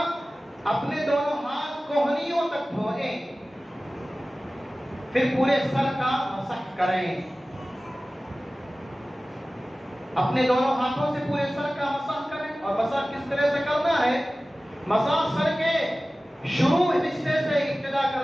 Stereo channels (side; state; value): both; normal; correlation 0.97